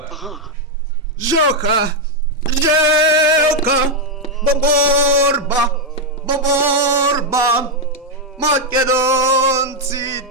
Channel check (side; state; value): both; normal; correlation 0.00